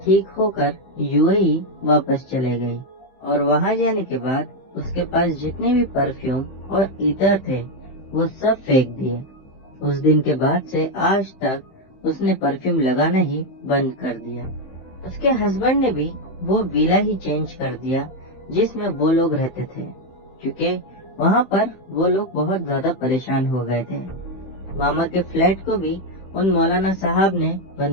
ठीक होकर यूएई वापस चले गई। और वहाँ जाने के बाद उसके पास जितने भी परफ्यूम और इतर थे वो सब फेंक दिए। उस दिन के बाद से आज तक उसने परफ्यूम लगाना ही बंद कर दिया। उसके हस्बैंड ने भी वो विला ही चेंज कर दिया जिसमें वो लोग रहते थे, क्योंकि वहाँ पर वो लोग बहुत ज्यादा परेशान हो गए थे। मामा के फ्लैट को भी उन मौलाना साहब ने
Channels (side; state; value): right; late; 15 ms